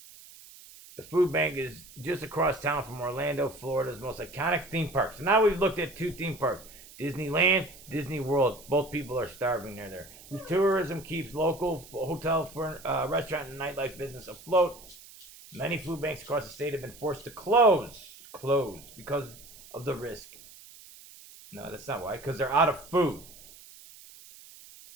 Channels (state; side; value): noise; right; hiss, 20 dB below the sound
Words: The food bank is just across town from Orlando, Florida's most iconic theme park. So now we've looked at two theme parks. Disneyland, Disney World. Both people are starving near there. Whose tourism keeps local hotel, restaurant, and nightlife business afloat. Many food banks across the state have been forced to close because of the risk. No, that's not why. Because they're out of food.